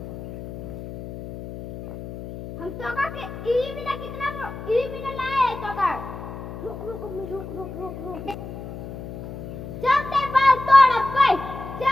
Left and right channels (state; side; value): noise; left; hum, 10 dB below the sound